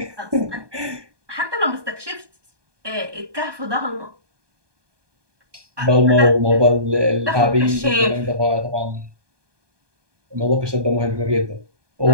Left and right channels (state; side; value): late; left; 1.2 ms